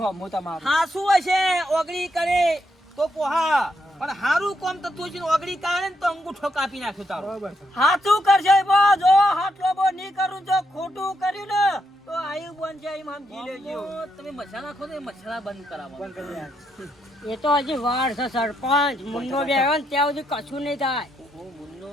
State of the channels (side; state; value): both; normal; correlation 0.79